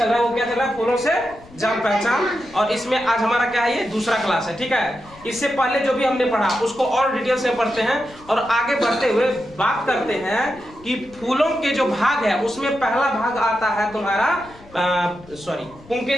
रहा है वो क्या चल रहा है, फूलों से जान पहचान। और इसमें आज हमारा क्या है, ये दूसरा क्लास है, ठीक है। इससे पहले जो भी हमने पढ़ा उसको और डिटेल से पढ़ते हैं और आगे बढ़ते हुए बात करते हैं कि फूलों के जो भाग है उसमें पहला भाग आता है तुम्हारा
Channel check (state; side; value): noise; left; rumble, 23 dB below the sound